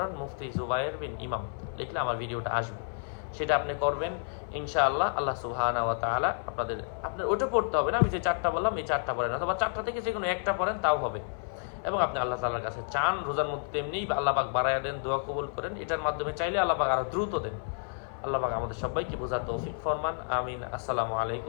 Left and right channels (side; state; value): right; silent; 58 dB below the other